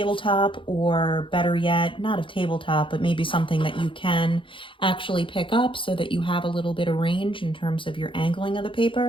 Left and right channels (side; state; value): right; late; 0.25 ms